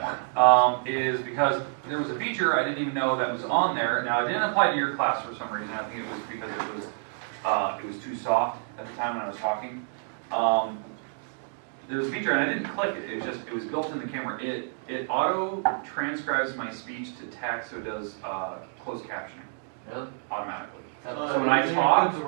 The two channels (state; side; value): silent; left; digital silence